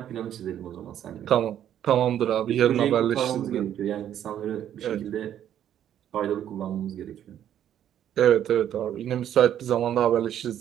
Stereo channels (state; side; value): quieter; left; 10.5 dB